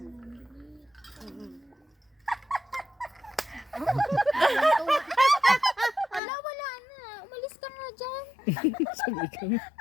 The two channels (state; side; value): drops out; right; at 6.2 s